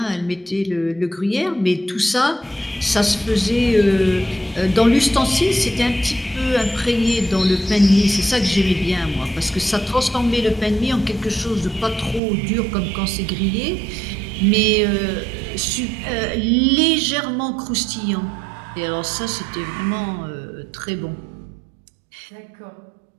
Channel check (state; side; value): drops out; left; at 12.2 s